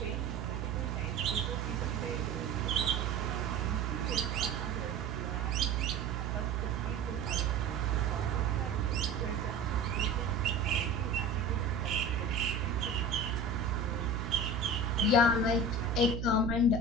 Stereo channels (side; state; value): right; noise; hum, 3 dB below the sound